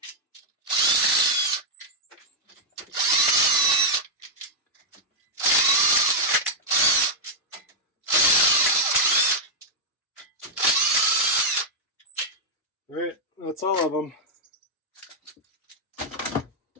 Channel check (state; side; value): normal; both; correlation -0.03